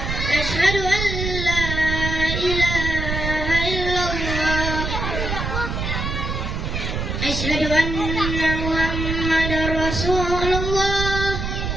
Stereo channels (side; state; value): right; noise; rumble, 3 dB below the sound